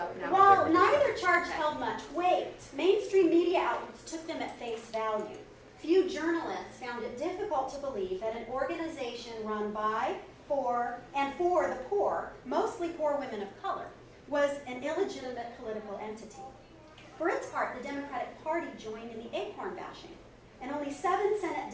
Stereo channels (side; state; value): both; identical; correlation 1.00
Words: now. While neither charge held much weight, mainstream media outlets took them at face value. Few journalists found it difficult to believe that an organization run by, for the poor, mostly poor women of color, was an illegitimate political entity. For its part, the Democratic Party joined in the ACORN bashing, and only 7 Senate